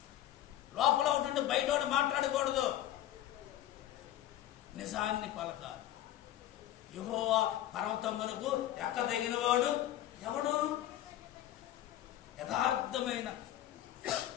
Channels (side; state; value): right; quieter; 13.0 dB